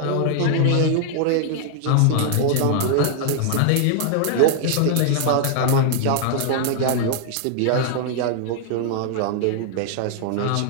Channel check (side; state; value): both; different; correlation -0.01